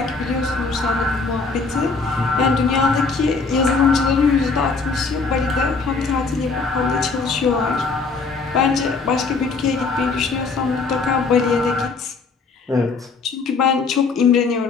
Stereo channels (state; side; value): quieter; right; 4.4 dB